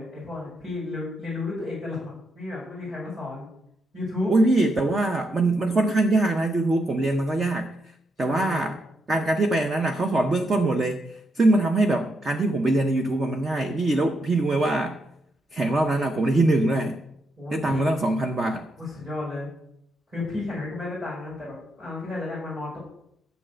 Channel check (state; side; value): normal; both; correlation 0.81